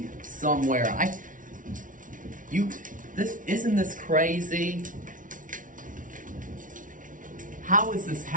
somewhere. Isn't this crazy? How is this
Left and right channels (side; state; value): left; late; 0.38 ms